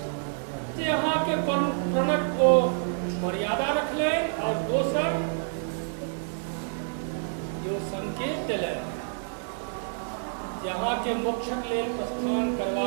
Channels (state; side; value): silent; left; digital silence